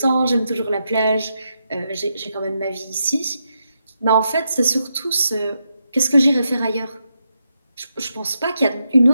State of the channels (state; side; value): inverted; both; correlation -0.84